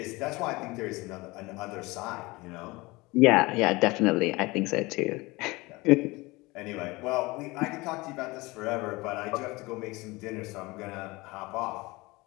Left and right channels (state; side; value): quieter; right; 22.7 dB